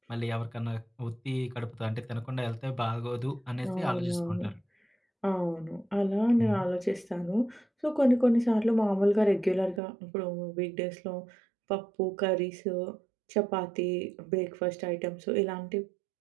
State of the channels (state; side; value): drops out; left; at 9.8 s